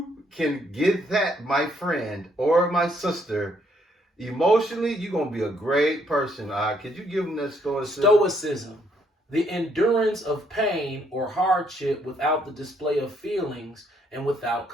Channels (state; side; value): normal; both; correlation 0.70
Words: can get that, my friend or my sister, emotionally, you're gonna be a great person. Could you give them that stoicism? Stoicism, the endurance of pain or hardship without the display of feelings and without